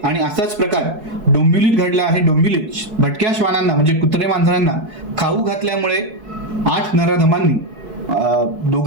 आणि असाच प्रकार डोंबिवलीत घडला आहे। डोंबिवलीत भटक्या श्वानांना म्हणजे कुत्रे मांजरांना खाऊ घातल्यामुळे 8 नराधमांनी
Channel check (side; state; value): left; late; 4.6 ms